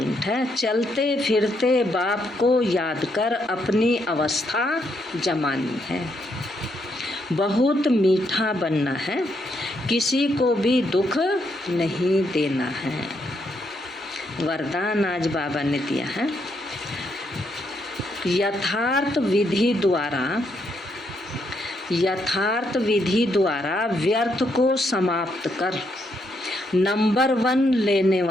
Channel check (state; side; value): normal; both; correlation 0.77